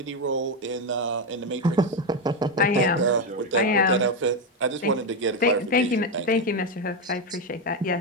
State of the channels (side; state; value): both; normal; correlation 0.09